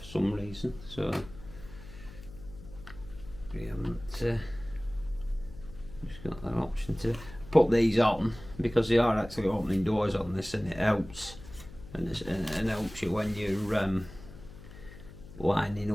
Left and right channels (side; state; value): left; noise; hum, 17 dB below the sound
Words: some reason, so we haven't just got that option to put these on, because they are actually opening doors on this, and it helps, and it helps you when you're lining